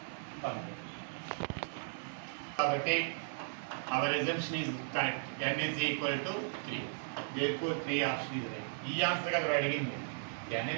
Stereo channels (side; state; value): left; silent; digital silence